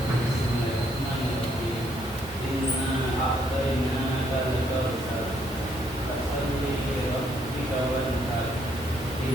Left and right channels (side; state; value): both; normal; correlation 0.71